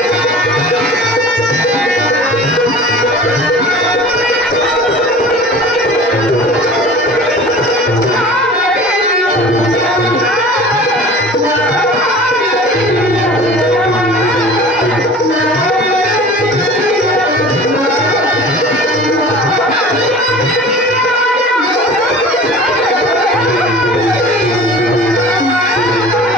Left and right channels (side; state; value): both; normal; correlation 0.41